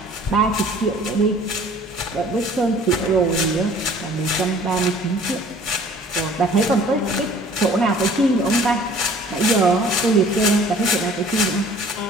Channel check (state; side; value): normal; both; correlation 0.52